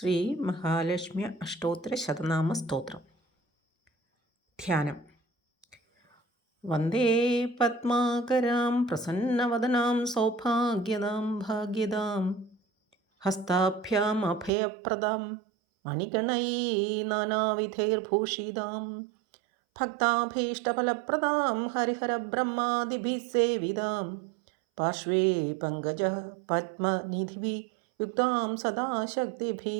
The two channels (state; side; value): drops out; left; at 14.5 s